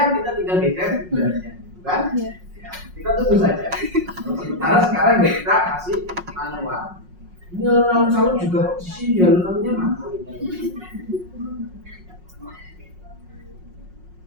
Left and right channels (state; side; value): late; left; 5.5 ms